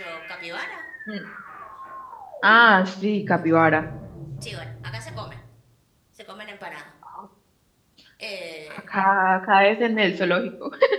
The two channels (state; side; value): identical; both; correlation 1.00